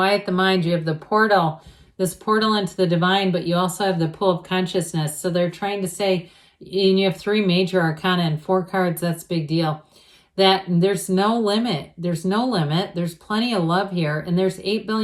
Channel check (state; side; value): identical; both; correlation 1.00